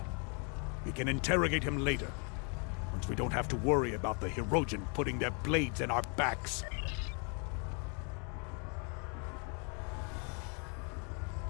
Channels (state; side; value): quieter; right; 37.2 dB